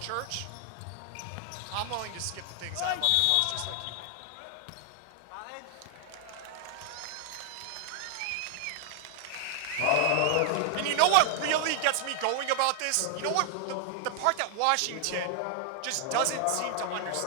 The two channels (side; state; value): both; different; correlation 0.00